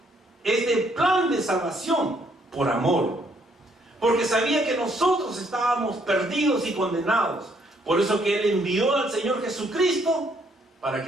plan de salvación por amor, porque sabía que nosotros estábamos perdidos y condenados. Por eso que Él envió al Señor Jesucristo para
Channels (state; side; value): normal; both; correlation 0.69